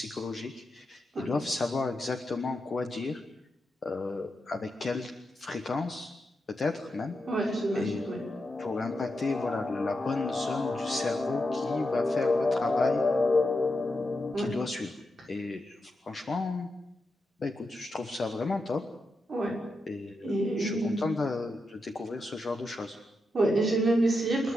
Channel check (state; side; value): normal; both; correlation 0.87